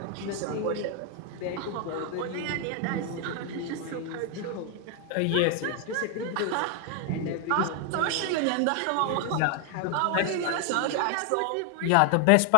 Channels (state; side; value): different; both; correlation 0.00